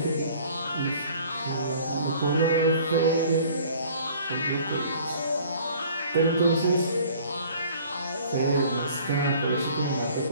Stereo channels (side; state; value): both; inverted; correlation -0.52